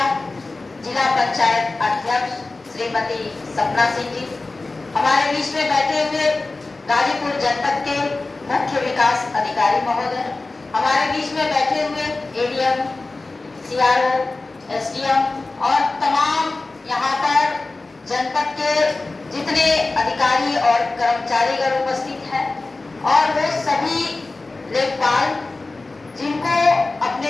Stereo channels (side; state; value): right; quieter; 3.4 dB